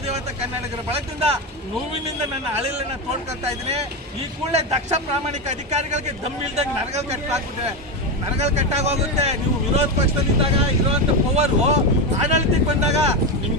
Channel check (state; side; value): normal; both; correlation 0.14